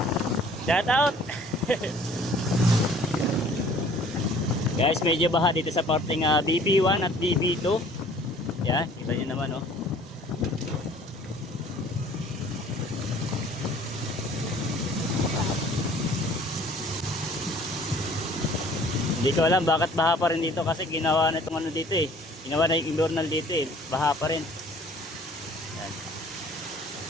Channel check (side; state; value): both; normal; correlation 0.53